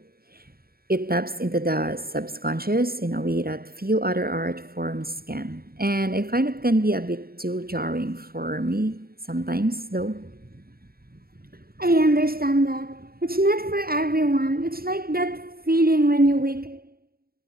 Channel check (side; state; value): left; late; 0.44 ms